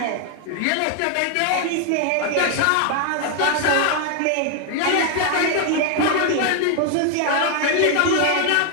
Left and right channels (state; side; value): different; both; correlation 0.00